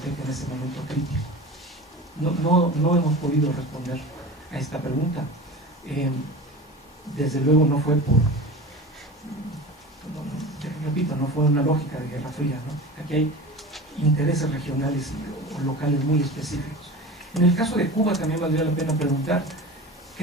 en ese momento crítico? No hemos podido responder a esta pregunta. Desde luego no fue repito, no fue una lógica de Guerra Fría, ¿no? Aquí hay intereses regionales o locales muy específicos. En el caso de Cuba también valdría la pena preguntar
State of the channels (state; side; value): normal; both; correlation 0.33